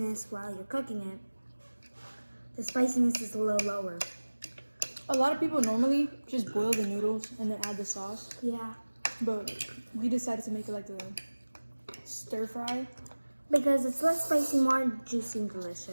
while you're cooking it, the spiciness is a little lower. A lot of people normally just boil the noodles and then add the sauce, Yeah. but we decided to make it like a stir fry. Because it's less spicy, more juicy and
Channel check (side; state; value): both; inverted; correlation -1.00